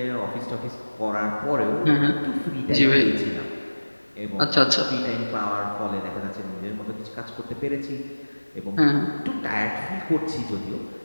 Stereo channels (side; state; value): both; inverted; correlation -1.00